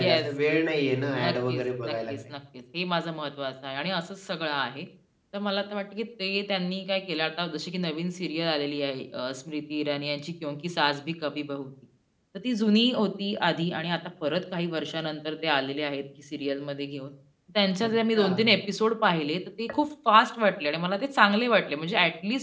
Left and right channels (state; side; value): identical; both; correlation 1.00